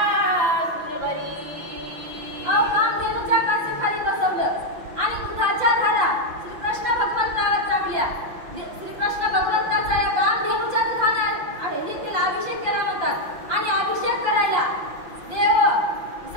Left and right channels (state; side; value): late; left; 5.8 ms